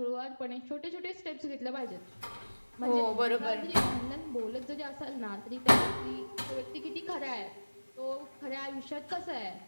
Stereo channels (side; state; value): both; inverted; correlation -1.00